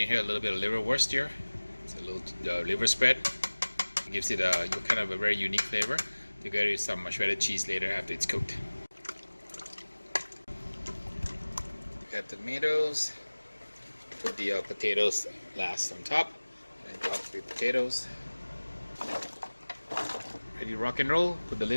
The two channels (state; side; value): inverted; both; correlation -1.00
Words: here, a little bit of liverwurst here. It's a little liver spread. It gives it a kind of a very unique flavor. Together with some shredded cheese later after it's cooked. Add tomatoes. Put the potatoes last on top. And top with potatoes. Ready to rock and roll. Put the